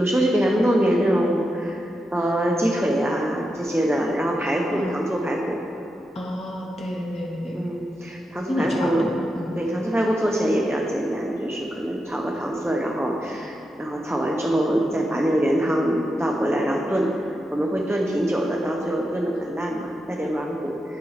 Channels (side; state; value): both; normal; correlation 0.87